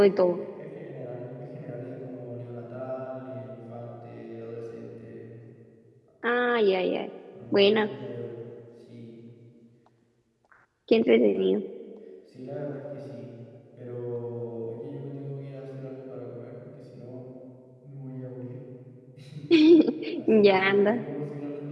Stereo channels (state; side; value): identical; both; correlation 1.00